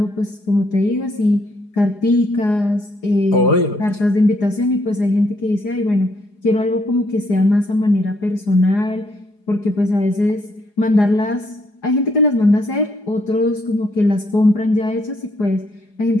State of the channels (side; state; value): right; late; 4.8 ms